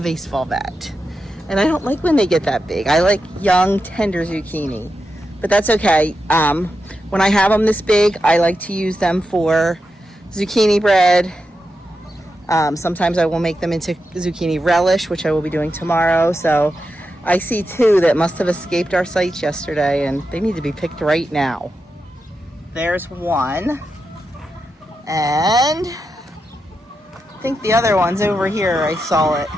baseball bat. And I don't like when they get that big. I like young, tender zucchini, but that's okay. When I have them this big, I like to use them for zucchini bread. Sometimes I will make them into zucchini relish, which I will be doing tomorrow. So I see 2 that must have escaped our sights yesterday, and they need to be picked right now. There's one. And I think the other one's over here. I saw it.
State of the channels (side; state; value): both; normal; correlation 0.88